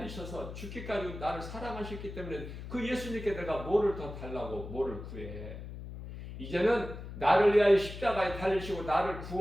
죽기까지 나를 사랑하셨기 때문에 그 예수님께 내가 뭐를 더 달라고 뭐를 구해. 이제는 나를 위하여 십자가에 달리시고 나를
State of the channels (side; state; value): left; noise; hum, 10 dB below the sound